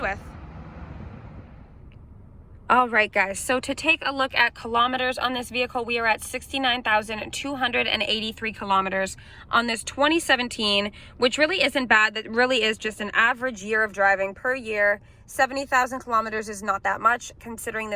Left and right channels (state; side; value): identical; both; correlation 1.00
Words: with. All right, guys, so to take a look at kilometers on this vehicle, we are at 69,283 kilometers on this 2017, which really isn't bad. That really is just an average year of driving per year. 70,000 kilometers is not that much, considering